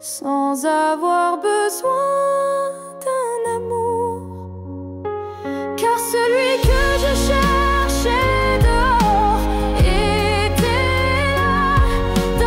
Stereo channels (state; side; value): identical; both; correlation 1.00